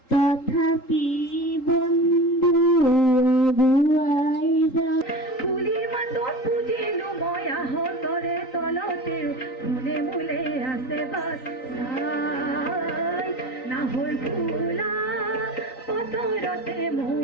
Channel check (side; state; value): right; late; 3.9 ms